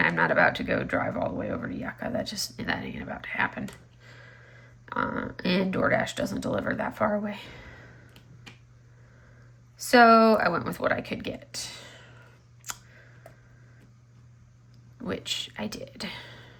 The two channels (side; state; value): both; identical; correlation 1.00